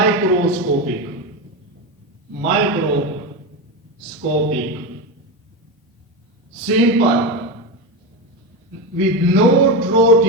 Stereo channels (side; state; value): both; normal; correlation 0.16